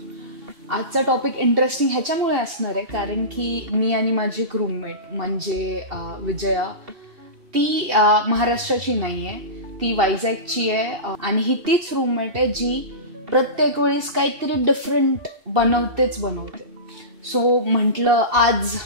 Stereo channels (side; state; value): left; late; 2.7 ms